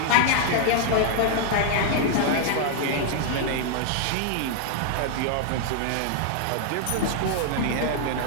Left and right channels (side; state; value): both; different; correlation 0.00